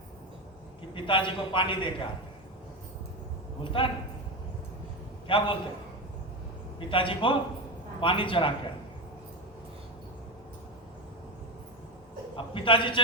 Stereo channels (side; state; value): both; normal; correlation 0.17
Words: कि पिताजी को पानी दे के आते हैं। बोलता है ना, क्या बोलते हैं? पिताजी को पानी चढ़ा के आते। अब पिताजी